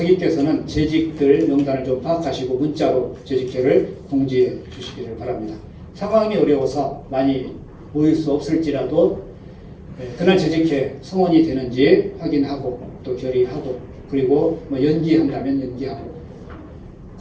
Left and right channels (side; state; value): both; identical; correlation 1.00